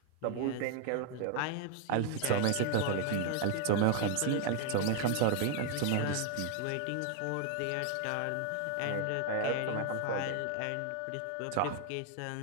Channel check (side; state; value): both; different; correlation 0.00